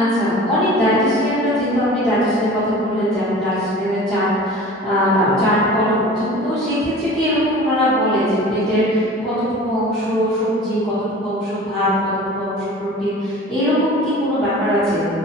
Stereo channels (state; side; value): normal; both; correlation 0.40